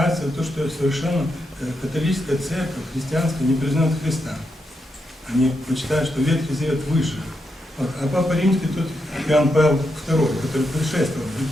то, что совершенно католическая церковь, христианская, не признает Христа. Они почитают, что Ветхий Завет выше. Вот. А Папа Римский, тут Иоанн Павел II, который предшествовал,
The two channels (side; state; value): both; normal; correlation 0.83